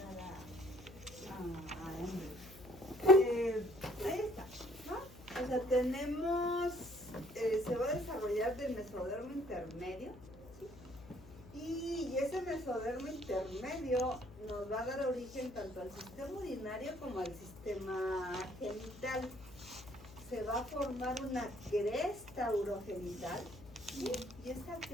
a hombres. Ahí está, ¿no? O sea, tenemos, se va a desarrollar del mesodermo intermedio, ¿sí? Y ese mesodermo intermedio nos va a dar origen tanto al sistema urinario como al sistema genital. Se va a formar una cresta urogenital, ¿sí? Y esta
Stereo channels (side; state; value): left; noise; hum, 18 dB below the sound